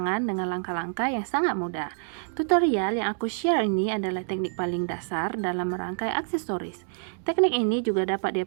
dengan langkah-langkah yang sangat mudah. Tutorial yang aku share ini adalah teknik paling dasar dalam merangkai aksesoris. Teknik ini juga dapat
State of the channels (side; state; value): left; silent; digital silence